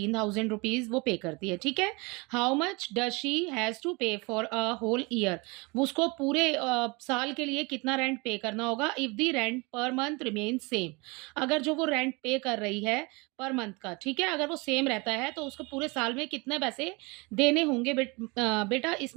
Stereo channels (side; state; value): left; quieter; 27.1 dB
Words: वो पे करती है। ठीक है, how much does she has to pay for a whole year. उसको पूरे साल के लिए कितना रेंट पे करना होगा if the rent per month remain same. अगर जो वो रेंट पे कर रही है पर मंथ का, ठीक है, अगर वो सेम रहता है तो उसको पूरे साल में कितने पैसे देने होंगे बेटा,